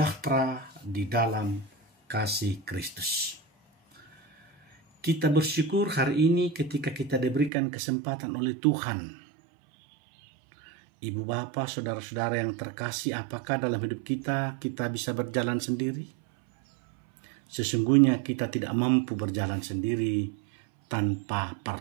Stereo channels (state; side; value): drops out; left; at 7.5 s